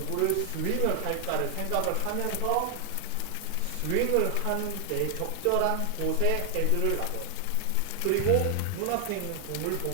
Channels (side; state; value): both; different; correlation 0.00